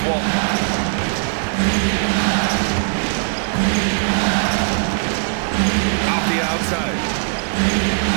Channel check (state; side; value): silent; left; 66 dB below the other